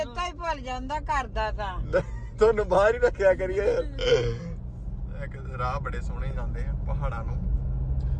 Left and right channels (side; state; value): both; identical; correlation 1.00